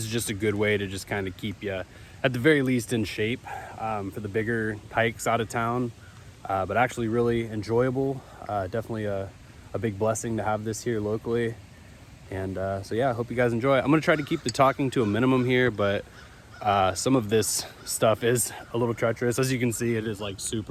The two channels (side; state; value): both; identical; correlation 1.00